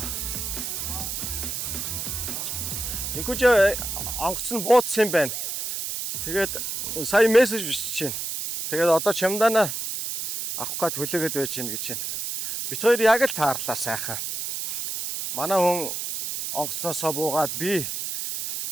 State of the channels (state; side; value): noise; right; hiss, 4 dB below the sound